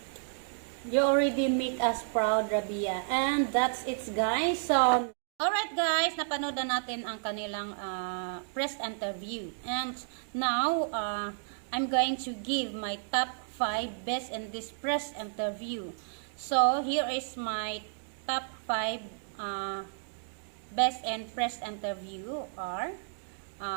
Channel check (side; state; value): left; silent; digital silence